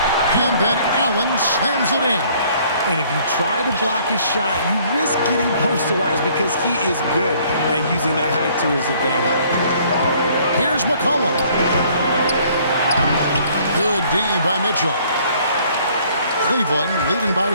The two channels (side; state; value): both; inverted; correlation -0.60